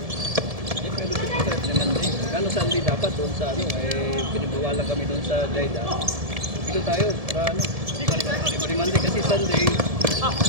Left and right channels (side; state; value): left; late; 1.7 ms